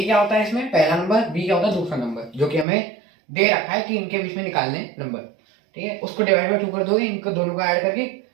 क्या होता है इसमें? पहला नंबर। b क्या होता है? दूसरा नंबर, जो कि हमें दे रखा है कि इनके बीच में निकालने नंबर। ठीक है, उसको डिवाइड बाय 2 कर दोगे, इनको दोनों को ऐड करके,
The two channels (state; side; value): drops out; left; at 2.7 s